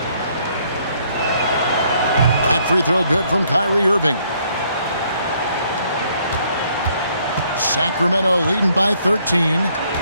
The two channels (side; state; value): both; inverted; correlation -0.67